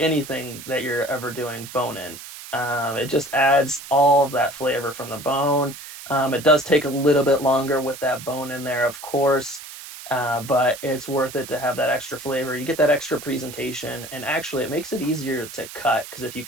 anything that you're ever doing, bone in. It just adds all of that flavor from the bone. It does take a little bit longer with that bone in there, of course, but it's worth it to have that extra flavor. You get that extra presentation, and actually it makes it easier to cut, because if you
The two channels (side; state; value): right; noise; hiss, 13 dB below the sound